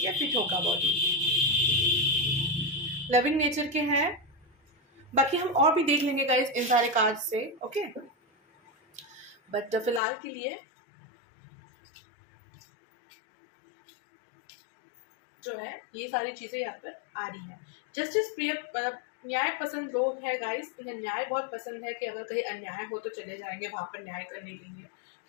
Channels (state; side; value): drops out; right; at 10.0 s